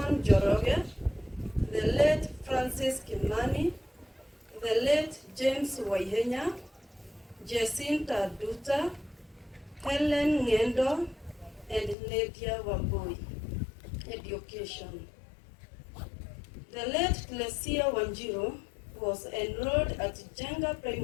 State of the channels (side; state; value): right; drops out; at 12.0 s